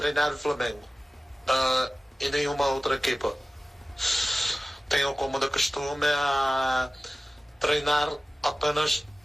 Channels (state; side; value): normal; both; correlation 0.96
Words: o Flamengo e nenhuma outra equipa. Tenho como de costume a treinar apenas